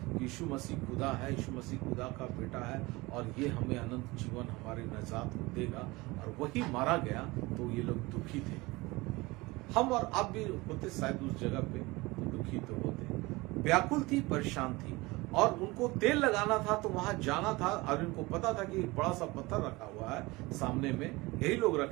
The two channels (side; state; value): left; quieter; 22.5 dB